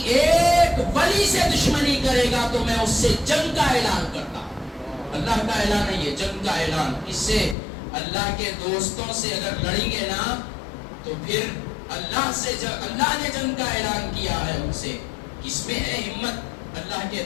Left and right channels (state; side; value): drops out; right; at 7.6 s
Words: ایک ولی سے دشمنی کرے گا تو میں اس سے جنگ کا اعلان کرتا ہوں۔ اللہ کا اعلان ہے یہ، جنگ کا اعلان۔ اس سے اللہ کے دوستوں سے اگر لڑیں گے نا تو پھر اللہ نے جنگ کا اعلان کیا ہے ان سے۔ کس میں ہے ہمت اللہ کے